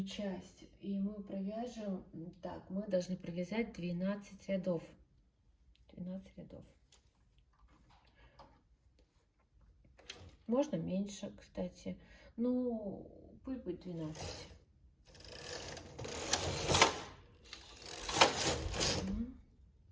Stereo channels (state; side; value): identical; both; correlation 1.00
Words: часть. И мы провяжем, так, мы должны провязать 12 рядов. 12 рядов. Можно меньше, кстати. Ну, пусть будет 12.